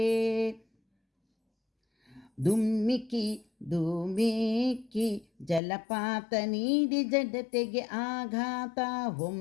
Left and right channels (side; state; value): right; drops out; at 5.6 s